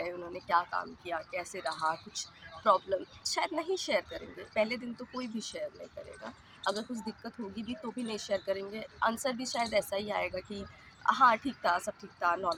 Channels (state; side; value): identical; both; correlation 1.00